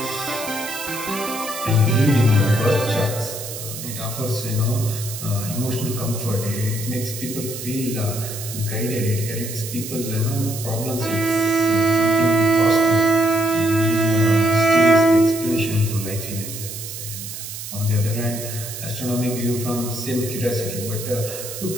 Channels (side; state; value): right; noise; hiss, 9 dB below the sound